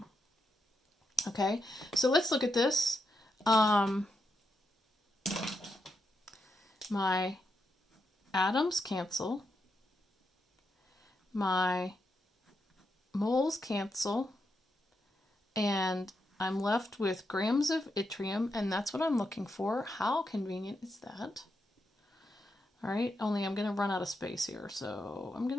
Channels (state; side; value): normal; both; correlation 0.83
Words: Okay, so let's look at this. My atoms cancel. My moles cancel. And I'm left with grams of yttrium, and that's what I'm looking for. How convenient is that? All right, only I'm going to run out of space here, so I'm